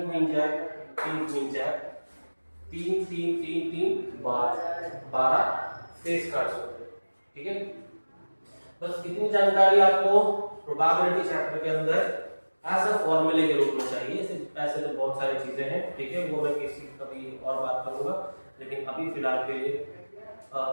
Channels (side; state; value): both; inverted; correlation -1.00